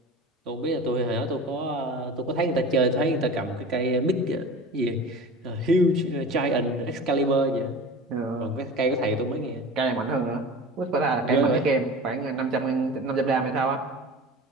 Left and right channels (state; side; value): normal; both; correlation 0.36